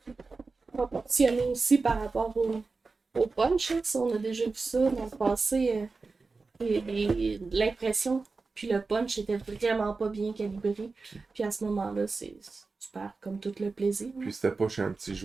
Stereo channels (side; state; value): left; quieter; 4.1 dB